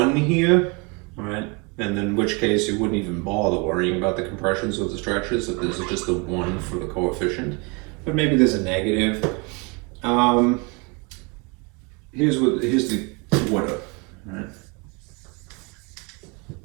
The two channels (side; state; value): left; quieter; 30.5 dB